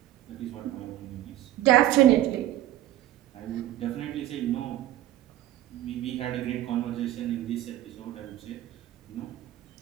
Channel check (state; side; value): quieter; left; 13.9 dB